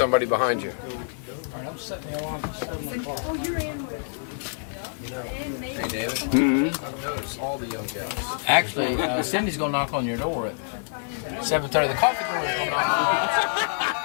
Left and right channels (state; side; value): silent; right; 57 dB below the other